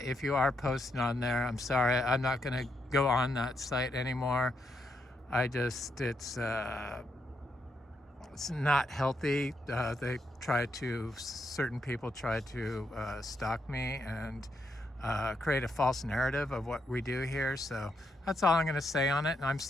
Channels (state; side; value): normal; both; correlation 0.79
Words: if you are posting on there, I'm sorry, I'm not going to go on that site anymore. It's not healthy. Certain people try to stalk me and create a false narrative of what we do here. So that's all I'm going to say on it. And I'm